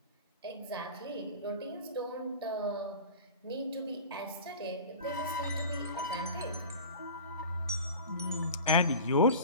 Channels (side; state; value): both; inverted; correlation -0.36